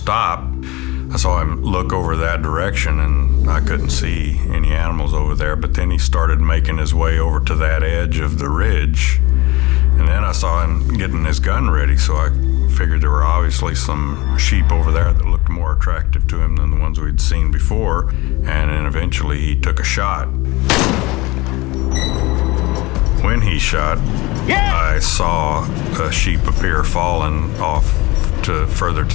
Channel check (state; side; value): quieter; right; 22.0 dB